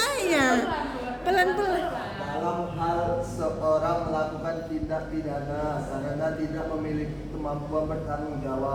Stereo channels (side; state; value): both; identical; correlation 1.00